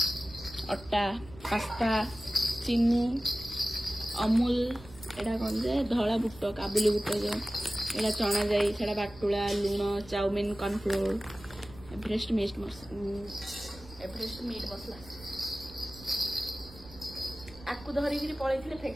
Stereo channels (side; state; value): right; noise; rumble, 19 dB below the sound